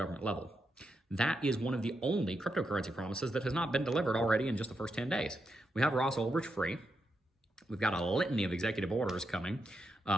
level. That is one of the only cryptocurrency promises that has not been delivered already in just the first 10 days. We have Ross Ulbricht free. We've got a litany of executive orders coming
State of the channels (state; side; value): normal; both; correlation 0.84